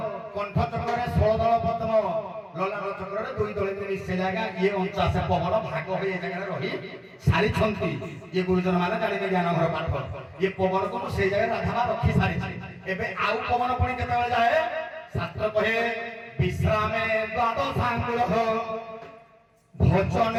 कंठ चक्रे 16 दल पद्म ललाट चक्रे 2 दल मिसे जाएगा ये 49 पवन भाग हो ये जगह रही सारी छंती ये गुरुजन माने जानिबे ज्ञान घर पाठ ये पवन को से जगह राधा रखी सारी एबे आउ पवन पणी केते बेले जाए शास्त्र कहे विश्रामे द्वादशांकुल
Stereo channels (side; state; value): both; identical; correlation 1.00